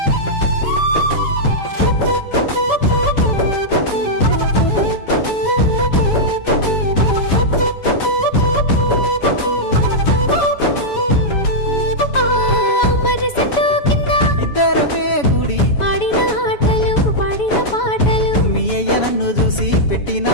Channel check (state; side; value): late; right; 7.1 ms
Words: నన్ను చూసి పెట్టిన